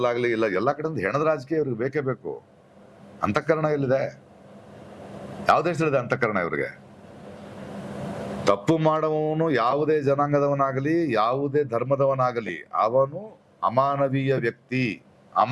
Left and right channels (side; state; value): both; identical; correlation 1.00